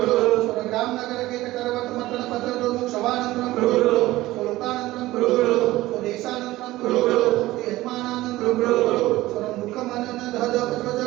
स्वग्राम नगर के करवत मतन पत्र दोमुख शवानंदनम कुरु स्वलोकानंदनम कुरु स्वदेशानंदनम कुरु यजमानानंदनम कुरु स्वमुखमनन धद पुत्र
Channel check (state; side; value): quieter; left; 17.4 dB